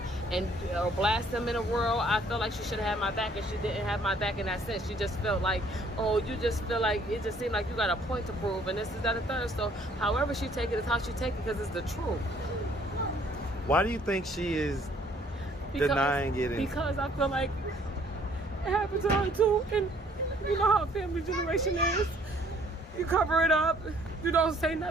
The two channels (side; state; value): both; normal; correlation 0.61